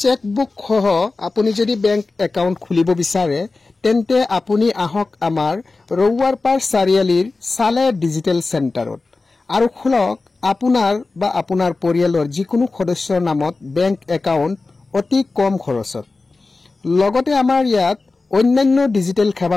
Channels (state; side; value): quieter; right; 3.6 dB